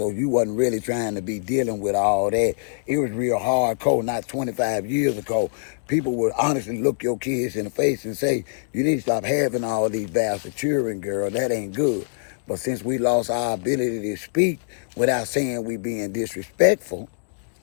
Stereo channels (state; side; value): silent; right; digital silence